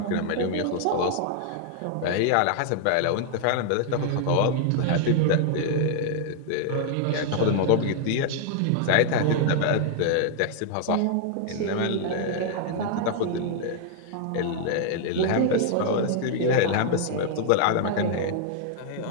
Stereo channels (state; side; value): different; both; correlation 0.00